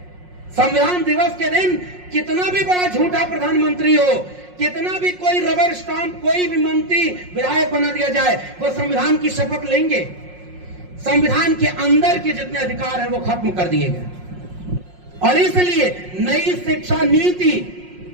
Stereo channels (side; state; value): left; late; 5.5 ms